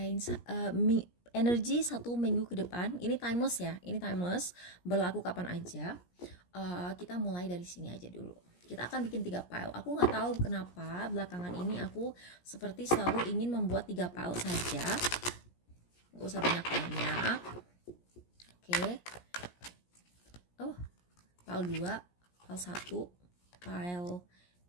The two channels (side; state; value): right; late; 17 ms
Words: energi 1 minggu ke depan. Ini timeless ya, ini timeless, berlaku kapan aja. Kita mulai dari sini aja dulu. Kita akan bikin 3 file. Aku nggak tahu kenapa belakangan ini aku seperti selalu ingin membuat 3 file saja. Nggak usah banyak-banyak. Oke. Oh, file 2, file 1, file